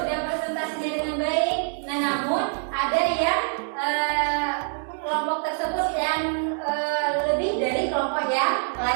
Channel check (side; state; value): left; silent; 62 dB below the other